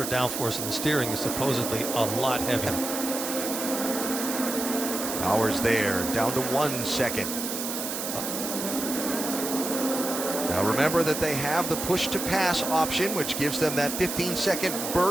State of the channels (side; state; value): right; noise; hiss, 4 dB below the sound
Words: downforce, and the steering is supposedly a lot heavier. Power's there, down to 1 second. Now remember that they have the push-to-pass option, which gives them that 15-second